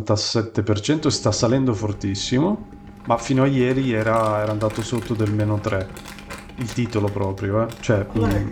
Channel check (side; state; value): both; identical; correlation 1.00